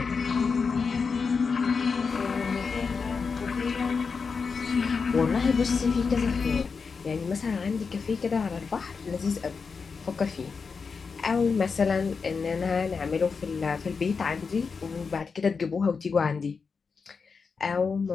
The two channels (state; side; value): quieter; right; 5.2 dB